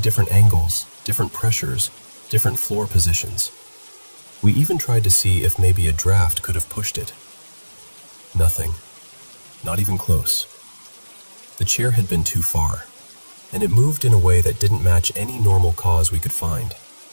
different angles, different pressures, different floor positions. We even tried to see if maybe a draft could have pushed it. Nothing. Not even close. The chair had been too far, and it moved in a way that didn't match any normal cause we could find.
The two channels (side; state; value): both; inverted; correlation -1.00